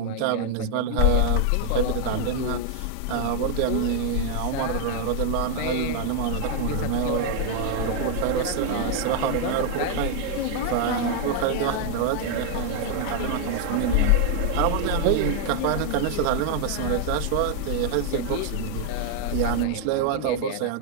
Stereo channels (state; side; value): different; both; correlation 0.00